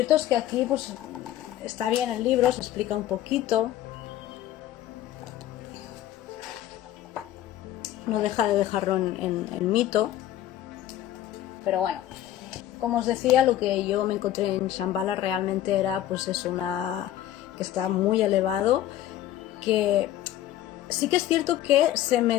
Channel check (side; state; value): right; quieter; 12.8 dB